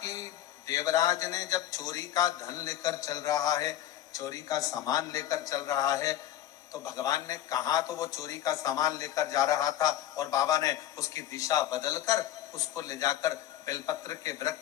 देवराज ने जब चोरी का धन लेकर चल रहा है, चोरी का सामान लेकर चल रहा है, तो भगवान ने कहा तो वो चोरी का सामान लेकर जा रहा था और बाबा ने उसकी दिशा बदलकर उसको ले जाकर बेलपत्र के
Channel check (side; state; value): right; quieter; 12.5 dB